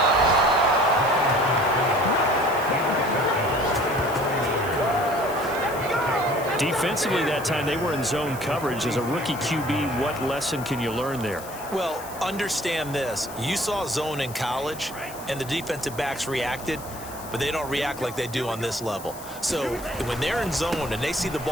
Defensively that time, they were in zone coverage. As a rookie QB, what lesson can you learn there? Well, understand this. You saw zone in college, and the defensive backs reacted, but they don't react like they do on this level. So when they're in zone and they see the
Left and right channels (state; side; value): noise; left; hiss, 15 dB below the sound